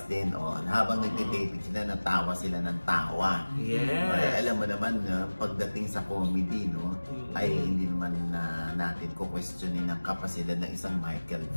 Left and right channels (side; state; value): both; inverted; correlation -1.00